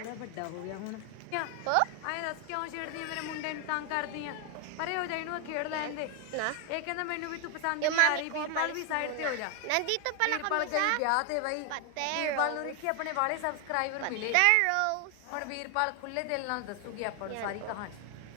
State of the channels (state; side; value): different; both; correlation 0.00